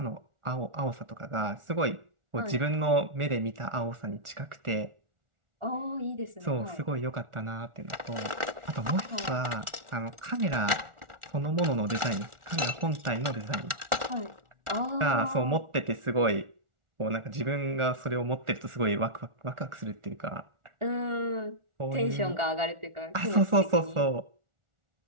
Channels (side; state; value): left; late; 1.4 ms